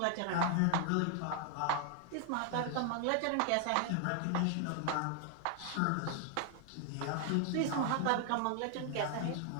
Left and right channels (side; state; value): both; different; correlation 0.00